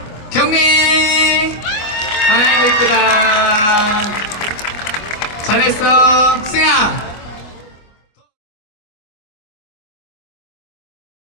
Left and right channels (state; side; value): late; right; 25 ms